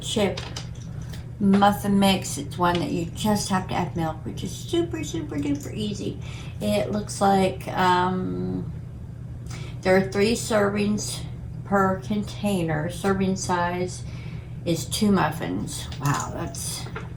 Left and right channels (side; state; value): both; identical; correlation 1.00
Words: chip muffin mix. It's one that you just have to add milk, which is super duper easy. It looks like there are 3 servings per container. Serving size is 2 muffins. Wow, that's